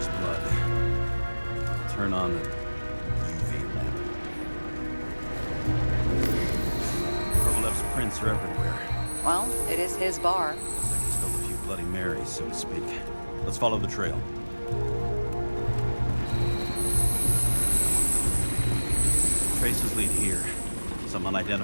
blood. Turn on the UV lamp. Kovalev's prints are everywhere. Well, it is his bar. Looks like he spilled a few Bloody Marys, so to speak. Let's follow the trail. Traces lead here. Some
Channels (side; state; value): both; inverted; correlation -1.00